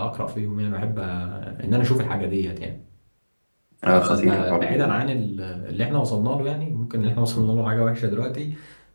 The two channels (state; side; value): inverted; both; correlation -1.00